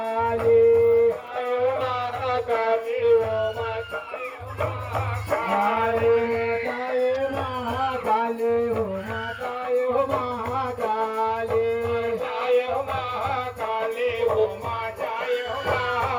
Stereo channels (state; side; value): identical; both; correlation 1.00